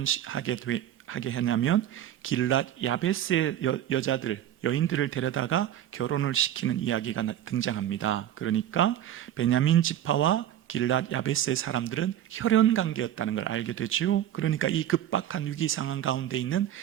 하냐면 길랏 야베스의 여인들을 데려다가 결혼을 시키는 이야기가 등장합니다. 그러니까 베냐민 지파와 길랏 야베스의 사람들은 혈연 관계였다는 걸 알게 되죠. 그러니까 이 급박한 위기 상황 가운데 있는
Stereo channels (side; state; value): left; quieter; 11.5 dB